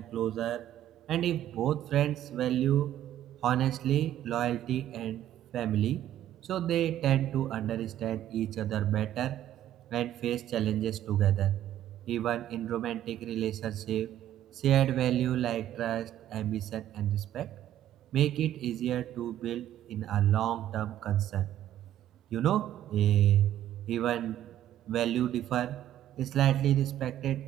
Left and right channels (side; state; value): left; quieter; 12.0 dB